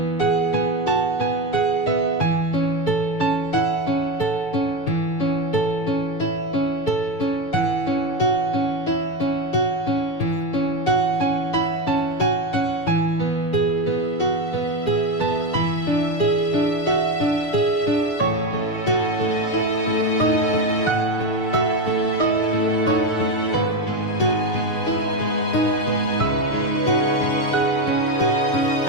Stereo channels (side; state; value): right; late; 6.8 ms